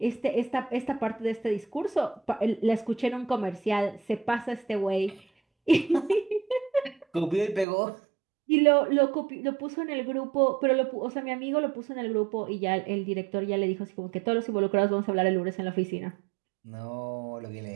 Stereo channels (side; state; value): left; drops out; at 7.7 s